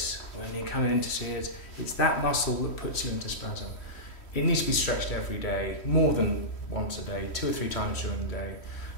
When you're coming in to see it, it's that muscle that puts you into spasm. It needs to be stretched every day, more than once a day, 2 or 3 times during the day,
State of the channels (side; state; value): right; late; 3.1 ms